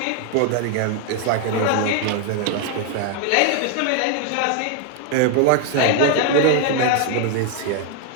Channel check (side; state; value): both; different; correlation 0.00